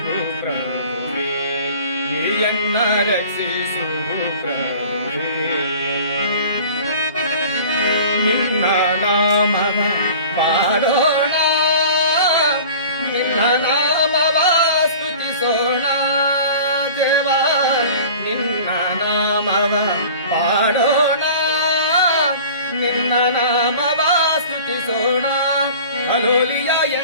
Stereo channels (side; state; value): both; inverted; correlation -0.42